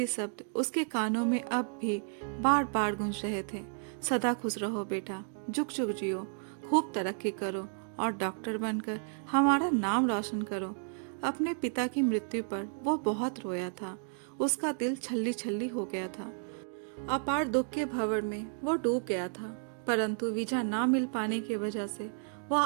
शब्द उसके कानों में अब भी बार बार गूंज रहे थे। सदा खुश रहो बेटा, जुग जुग जियो, खूब तरक्की करो और डॉक्टर बनकर हमारा नाम रोशन करो। अपने पिता की मृत्यु पर वो बहुत रोया था। उसका दिल छल्ली छल्ली हो गया था। अपार दुख के भंवर में वो डूब गया था, परंतु वीजा ना मिल पाने की वजह से वह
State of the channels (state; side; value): silent; left; 56 dB below the other